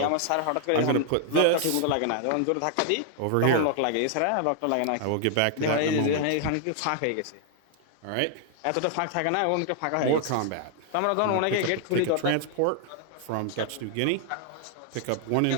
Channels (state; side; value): different; both; correlation 0.00